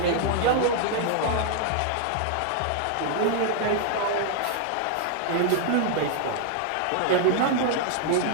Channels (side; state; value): both; different; correlation 0.00